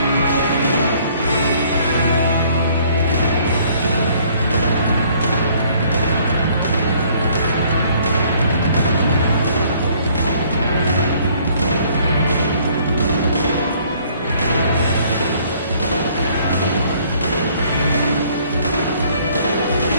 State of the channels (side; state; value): both; inverted; correlation -0.60